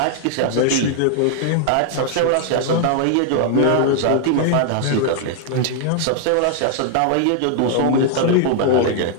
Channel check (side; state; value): both; different; correlation 0.00